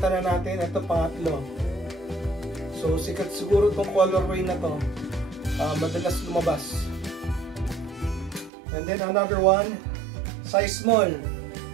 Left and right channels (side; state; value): left; drops out; at 8.5 s